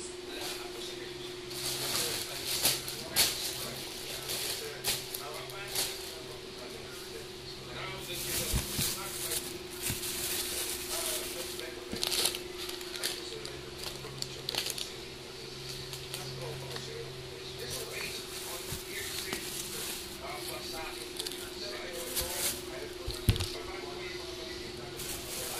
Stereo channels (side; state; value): both; identical; correlation 1.00